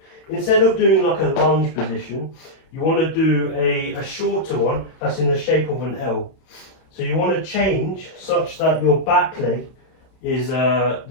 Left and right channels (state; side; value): late; right; 31 ms